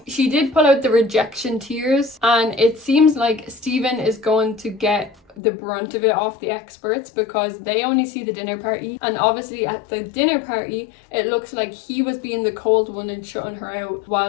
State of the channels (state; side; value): drops out; right; at 5.4 s